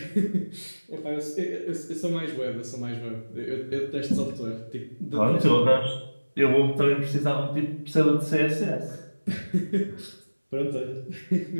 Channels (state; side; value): inverted; both; correlation -1.00